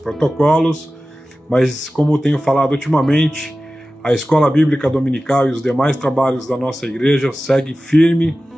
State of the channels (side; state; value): both; normal; correlation 0.95